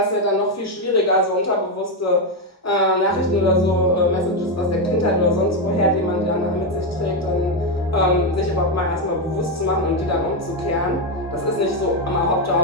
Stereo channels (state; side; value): normal; both; correlation 0.06